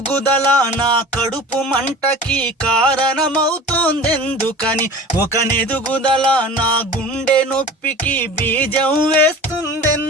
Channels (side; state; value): both; normal; correlation 0.38